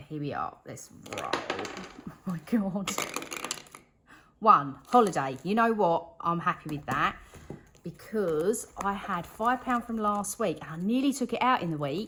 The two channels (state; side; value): identical; both; correlation 1.00